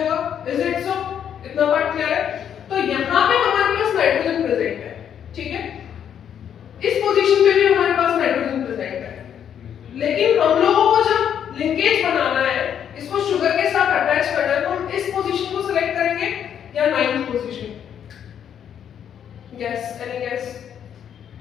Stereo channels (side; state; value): right; quieter; 8.9 dB